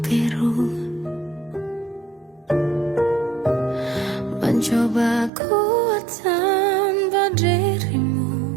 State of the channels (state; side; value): drops out; left; at 5.3 s